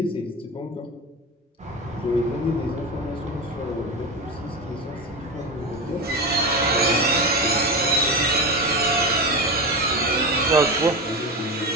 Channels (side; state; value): both; normal; correlation 0.21